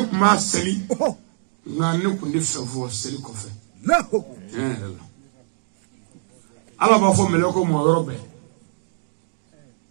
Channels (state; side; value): silent; left; digital silence